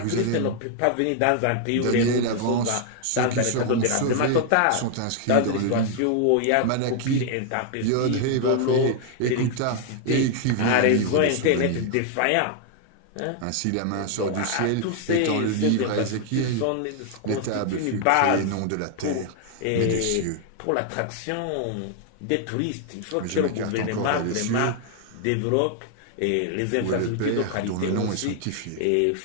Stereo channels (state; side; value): different; both; correlation 0.00